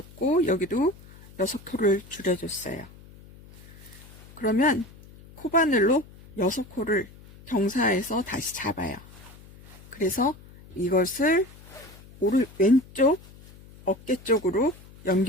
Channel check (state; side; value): noise; left; hum, 21 dB below the sound